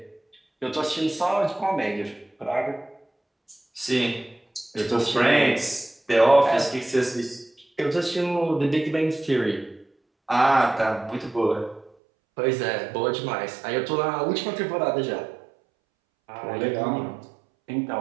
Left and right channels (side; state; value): left; drops out; at 11.9 s